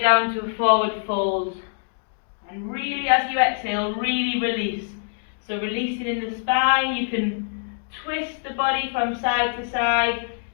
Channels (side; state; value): right; silent; digital silence